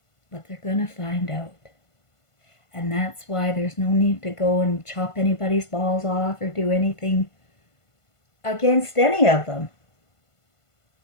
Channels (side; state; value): right; late; 1.5 ms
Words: But they're going to find out. And that's why there's no need to go and chop anybody's balls off or do anything against any of them.